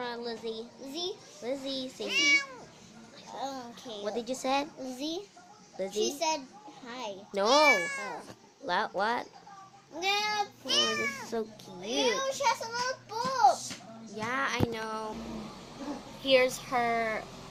Lizzie. Lizzie? Lizzie, say. Okay. What did you say? Lizzie? Lizzie? She said hi. No. Oh. What? No. Oh, this is so cute. Ew, she has a little boob. Yeah, I know. Here's her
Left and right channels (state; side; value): identical; both; correlation 1.00